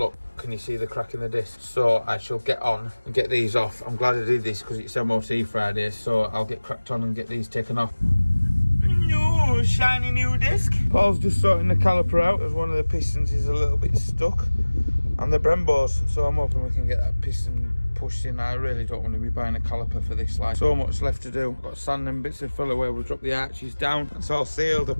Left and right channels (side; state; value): both; inverted; correlation -1.00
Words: can you see the crack in the disc? So I shall get on and get these off. I'm glad I did this because it's MOT Friday, so I'll get cracked on and get these taken off. No, shiny new disc. Paul's just sorting the caliper out as one of the pistons is a little bit stuck. And the Brembos, so I'm hoping we can get that piston pushed in. I really don't want to be buying a caliper for this line. So much left to do. I've got sand and bits of filler where we'll drop the arches down. It's all sealed. I've